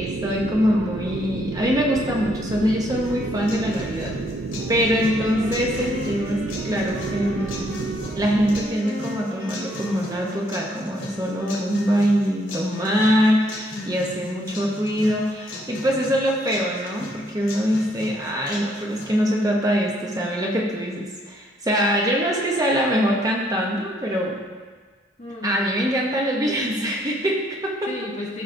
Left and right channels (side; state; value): both; normal; correlation 0.69